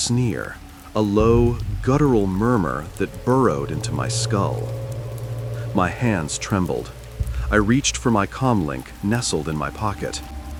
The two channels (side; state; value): both; identical; correlation 1.00